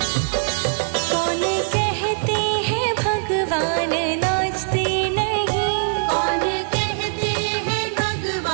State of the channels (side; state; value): left; silent; digital silence